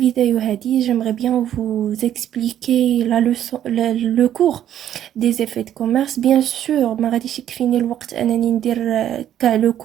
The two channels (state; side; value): quieter; left; 10.9 dB